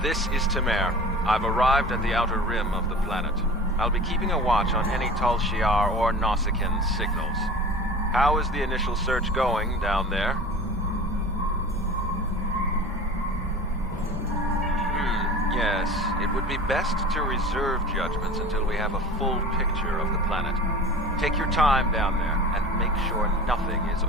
This is Tamer. I've arrived at the outer rim of the planet. I'll be keeping a watch on any Tal Shiar or Nausicaan signals. How is the initial search going down there? Yes, it would be best to reserve judgments until we have a full picture of the planet. Take your time down there and make sure nothing is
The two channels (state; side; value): normal; both; correlation 0.38